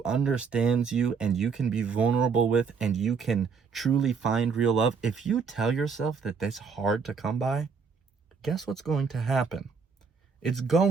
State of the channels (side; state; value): left; quieter; 5.6 dB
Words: understands you and you can be vulnerable with and you can truly find real love, if you tell yourself that that's hard to come by, guess what's going to happen? It's